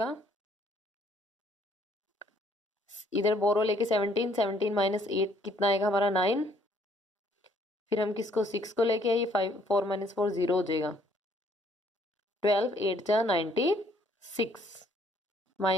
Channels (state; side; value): normal; both; correlation 0.65